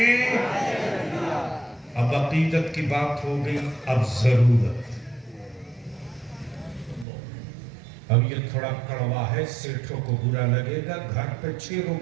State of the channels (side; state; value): left; drops out; at 7.1 s